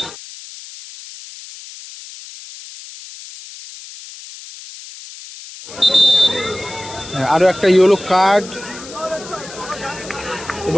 आरो एक येलो कार्ड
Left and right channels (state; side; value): noise; left; hiss, 15 dB below the sound